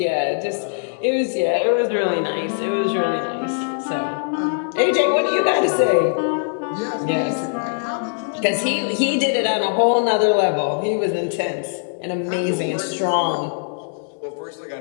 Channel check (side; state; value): right; silent; 65 dB below the other